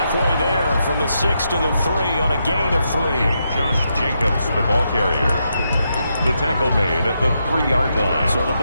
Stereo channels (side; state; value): both; inverted; correlation -0.82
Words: there from the 6 to the 3 on a gain of 3. Josh Jacobs, the ball carrier. The tackle made at the 3-yard line. So the